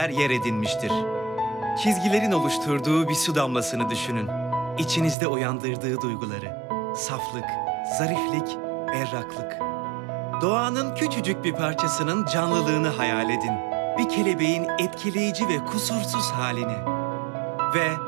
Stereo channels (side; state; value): left; drops out; at 5.2 s